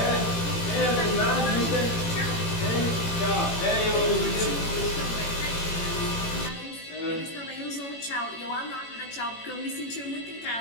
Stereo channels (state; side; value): late; right; 18 ms